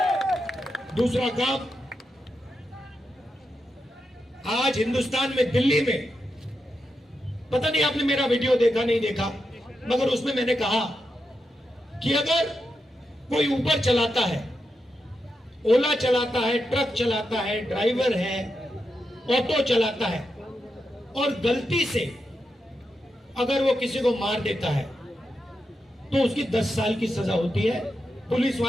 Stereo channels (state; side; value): normal; both; correlation 0.86